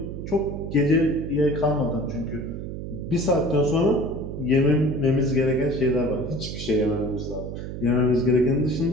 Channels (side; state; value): right; noise; hum, 7 dB below the sound